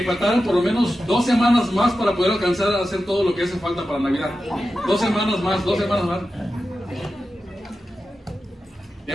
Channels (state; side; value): normal; both; correlation 0.92